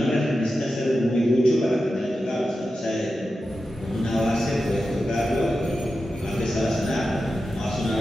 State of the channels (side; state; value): both; normal; correlation 0.91